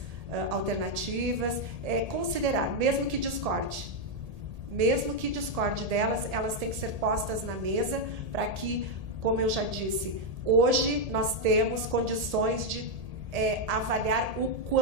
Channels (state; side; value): late; left; 1.8 ms